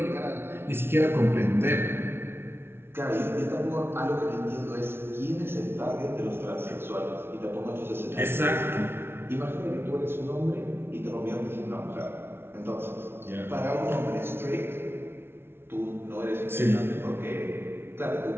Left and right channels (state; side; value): late; left; 0.12 ms